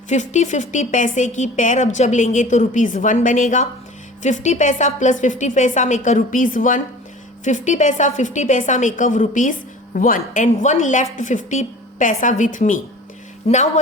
50-50 पैसे की पेयर. अब जब लेंगे तो रुपीज 1 बनेगा. 50 पैसा प्लस 50 पैसा मेक अ रुपीज 1. 50 पैसा make a rupees 1 and 1 left 50 paisa with me. Now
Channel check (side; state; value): both; normal; correlation 0.42